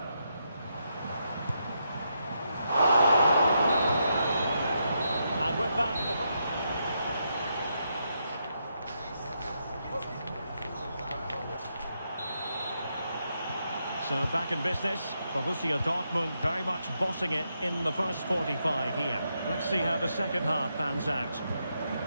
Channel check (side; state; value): both; inverted; correlation -0.81